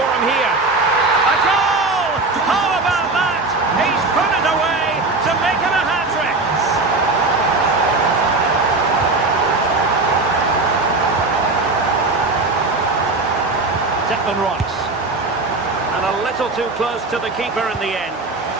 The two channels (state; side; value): quieter; left; 3.5 dB